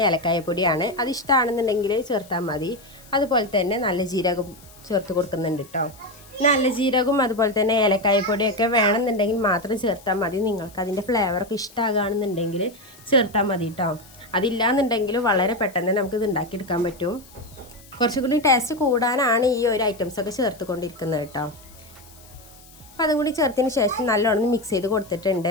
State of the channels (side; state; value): left; noise; hiss, 23 dB below the sound